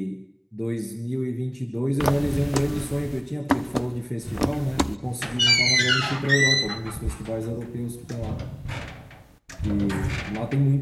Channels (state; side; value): identical; both; correlation 1.00